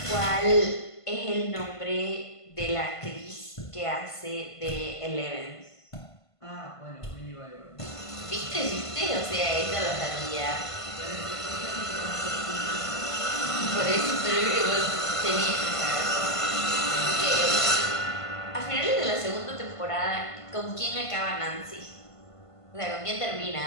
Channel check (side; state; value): right; late; 1.5 ms